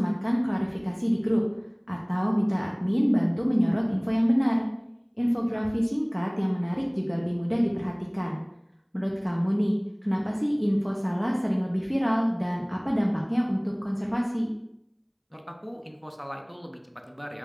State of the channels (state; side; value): identical; both; correlation 1.00